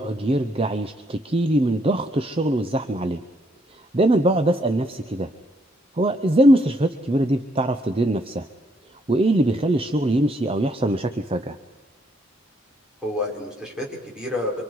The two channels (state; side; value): normal; both; correlation 0.72